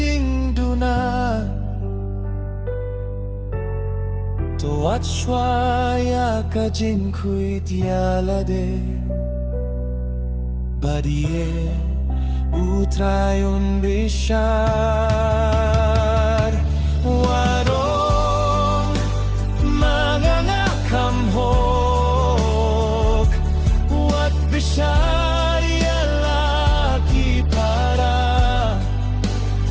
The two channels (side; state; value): both; identical; correlation 1.00